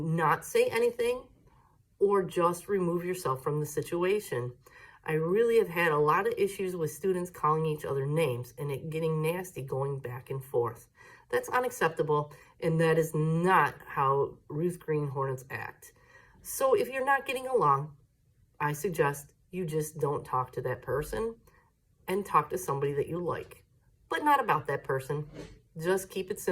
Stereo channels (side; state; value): both; identical; correlation 1.00